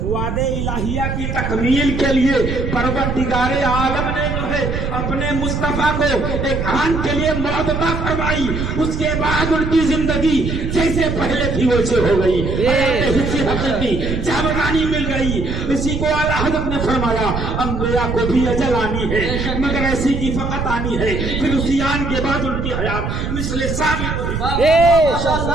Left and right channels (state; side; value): noise; right; rumble, 3 dB below the sound